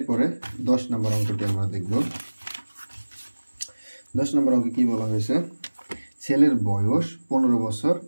10 নম্বর অঙ্কটি আমরা দেখব। 10 নম্বর অঙ্কে কি বলা হয়েছে? ছেলের বয়স 15 বছর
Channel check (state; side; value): inverted; both; correlation -1.00